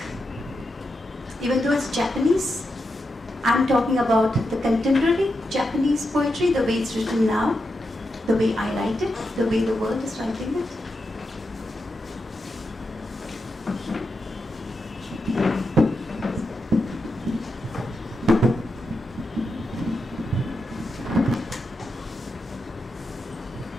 Even though it's Japanese, I'm talking about the contemporary Japanese poetry, the way it's written now, the way I write it, the way the world is writing it.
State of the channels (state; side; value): normal; both; correlation 0.86